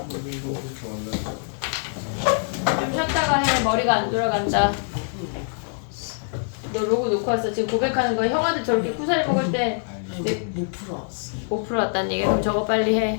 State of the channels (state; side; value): silent; right; 63 dB below the other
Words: 좀 쉬었다가 해. 머리가 안 돌아간다. 너 로그 놓고 왔어. 지금 고백하는 거야. 형아들 저렇게 쿠사리 먹을 때 못 풀어왔어. 못 풀어왔다는 얘기야. 그럼 저거 빨리